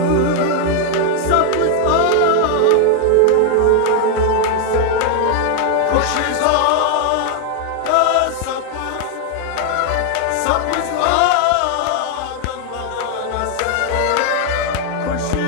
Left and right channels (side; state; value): both; different; correlation 0.00